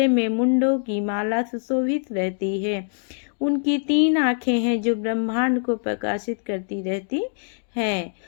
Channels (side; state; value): right; silent; digital silence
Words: में मुंडों की माला सुशोभित रहती है। उनकी 3 आँखें हैं जो ब्रह्मांड को प्रकाशित करती रहती हैं